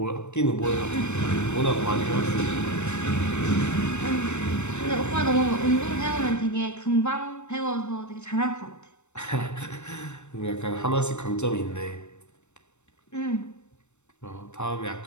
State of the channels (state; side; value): late; right; 0.83 ms